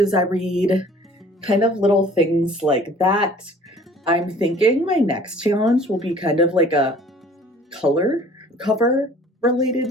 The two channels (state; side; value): normal; both; correlation 0.51